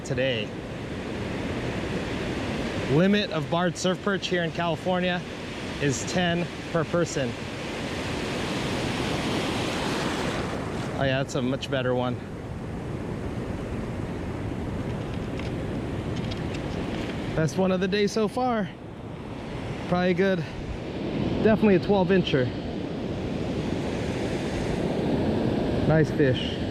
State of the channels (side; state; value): both; identical; correlation 1.00